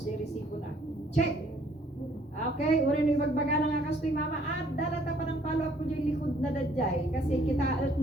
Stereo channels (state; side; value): normal; both; correlation 0.62